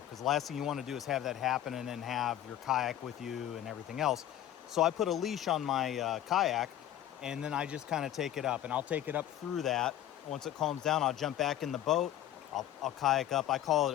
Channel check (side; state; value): right; quieter; 12.0 dB